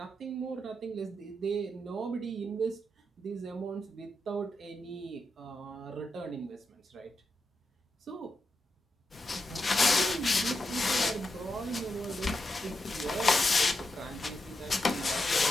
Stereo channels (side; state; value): both; normal; correlation 0.86